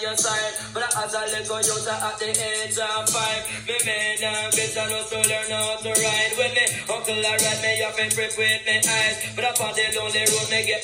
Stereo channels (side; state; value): both; identical; correlation 1.00